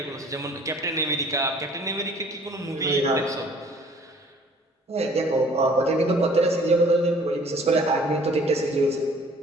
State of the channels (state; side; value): normal; both; correlation 0.54